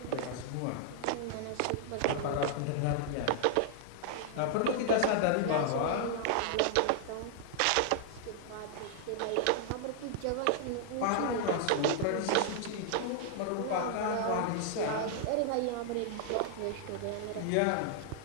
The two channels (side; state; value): both; different; correlation 0.00